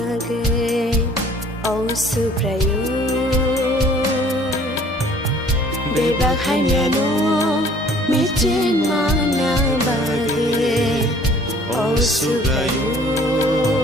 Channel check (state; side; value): normal; both; correlation 0.54